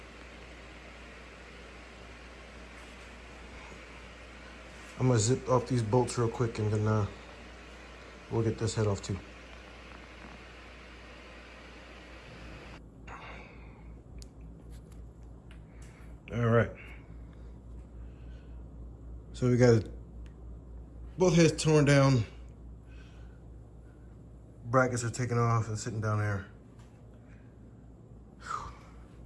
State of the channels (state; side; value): identical; both; correlation 1.00